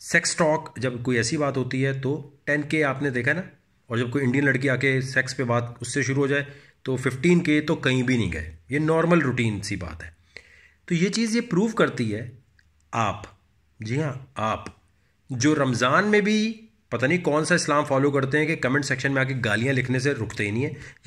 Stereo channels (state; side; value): identical; both; correlation 1.00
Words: सेक्स टॉक जब कोई ऐसी बात होती है तो 10K आपने देखा ना, और जब कोई इंडियन लड़की आके सेक्स पे बात उससे शुरू हो जाए तो 15K तो कहीं भी नहीं गए। ये नॉर्मल रूटीन सी बात है। तो ये चीज़ ये प्रूव करती है आप, जी हाँ आप, जो रमज़ान में भी पता नहीं कौन सा इस्लाम फॉलो करते हैं कि कमेंट सेक्शन में आके गालियाँ लिखने से रुकते ही नहीं है।